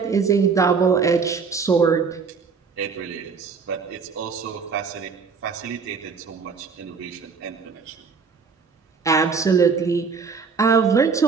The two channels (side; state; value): left; quieter; 5.4 dB